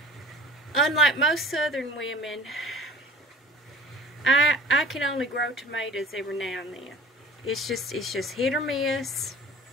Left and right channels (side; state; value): both; normal; correlation 0.44